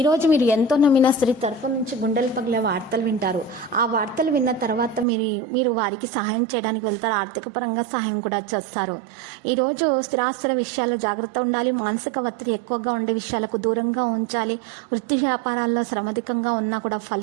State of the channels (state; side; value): drops out; left; at 5.1 s